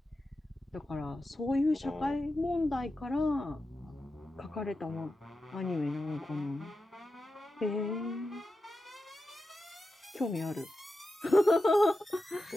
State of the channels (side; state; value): both; normal; correlation 0.91